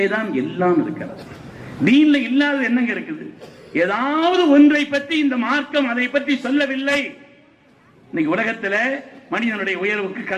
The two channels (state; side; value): identical; both; correlation 1.00